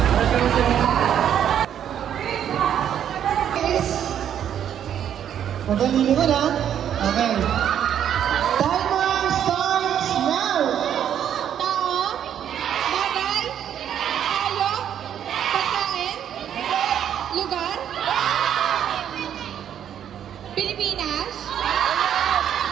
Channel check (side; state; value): left; quieter; 9.6 dB